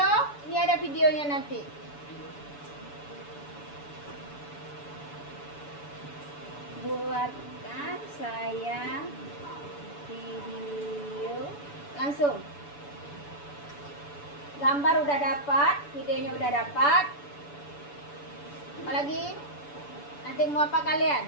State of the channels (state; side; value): late; right; 6.9 ms